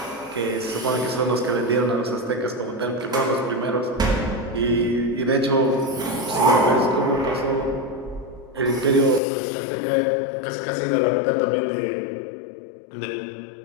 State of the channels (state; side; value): drops out; right; at 9.2 s